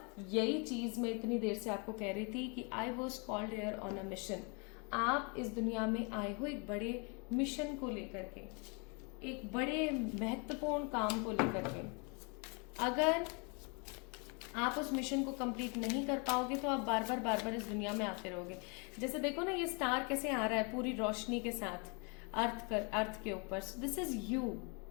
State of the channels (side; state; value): right; quieter; 33.8 dB